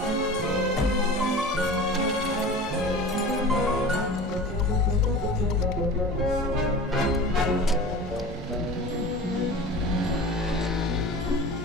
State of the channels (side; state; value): both; normal; correlation 0.36